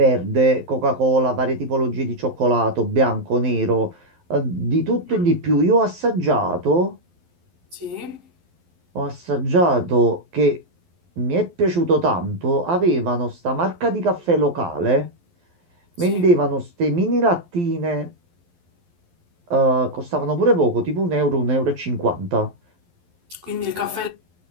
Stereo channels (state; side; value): late; left; 12 ms